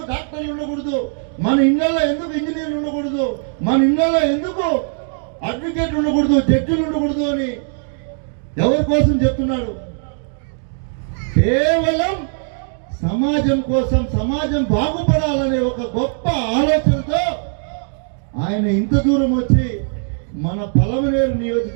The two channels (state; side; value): silent; left; 66 dB below the other